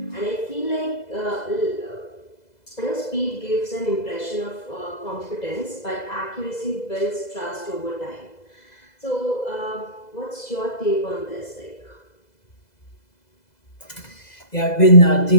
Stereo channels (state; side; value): late; right; 2.0 ms